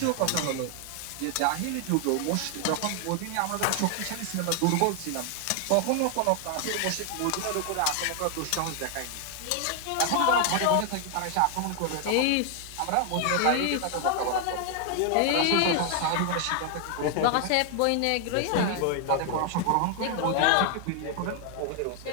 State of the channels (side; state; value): both; different; correlation 0.00